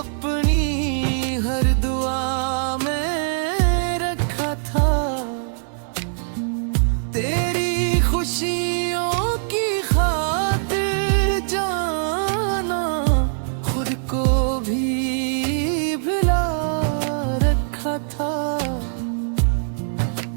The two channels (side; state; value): left; silent; digital silence